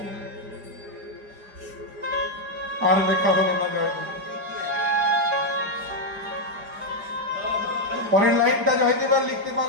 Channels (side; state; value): left; late; 4.9 ms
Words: আর লেখা হলো না জয়দেব। পরের লাইনটা জয়দেব আর লিখতে